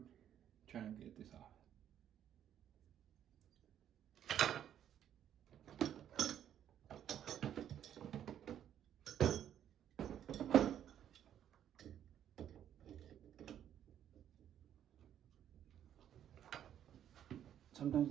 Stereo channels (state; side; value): quieter; left; 10.2 dB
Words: trying to get this off. Sometimes